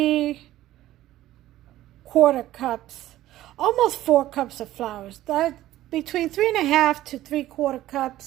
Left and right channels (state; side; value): quieter; left; 14.5 dB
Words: cups, almost 4 cups of flour. That between 3.5 to 3/4